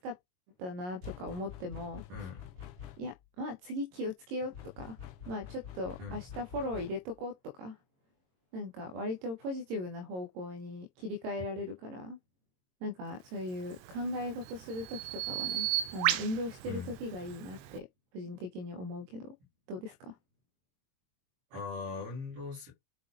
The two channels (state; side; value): late; left; 22 ms